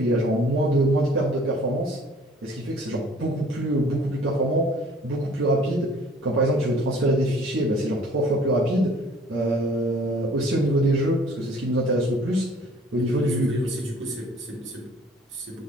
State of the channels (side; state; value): both; normal; correlation 0.53